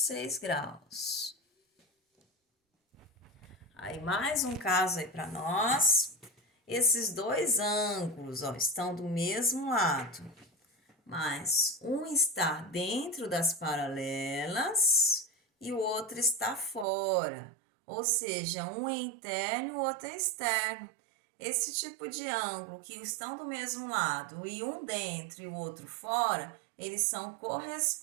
graus. Aí, mais um caso aí para nós. Esses dois ângulos, ó, estão do mesmo lado, mas um está dentro das paralelas e o outro está fora. Ou seja, um é interno e o outro é externo. Esse tipo de ângulo que estão do mesmo lado e um dentro e o outro fora, eles são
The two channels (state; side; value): drops out; left; at 16.9 s